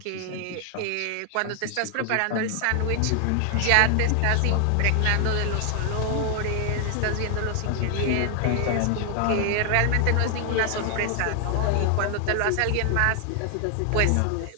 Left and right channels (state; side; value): different; both; correlation 0.00